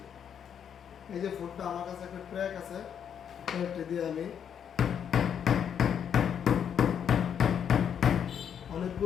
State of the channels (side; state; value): right; quieter; 8.3 dB